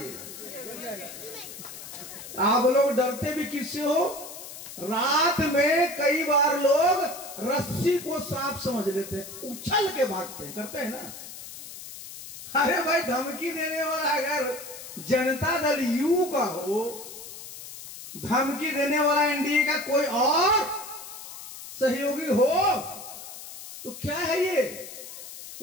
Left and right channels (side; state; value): left; noise; hiss, 13 dB below the sound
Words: आप लोग डरते भी किससे हो? रात में कई बार लोग रस्सी को सांप समझ लेते हैं, उछल के भागते हैं, करते हैं ना। अरे भाई धमकी देने वाला अगर जनता दल यू का हो, धमकी देने वाला एनडीए का कोई और सहयोगी हो, तो क्या है ये?